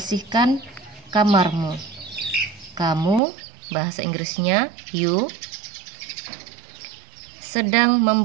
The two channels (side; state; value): left; drops out; at 3.2 s